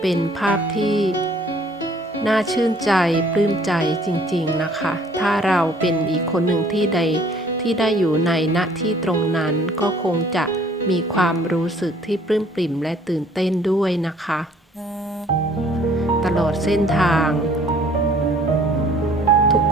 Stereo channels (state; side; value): normal; both; correlation 0.58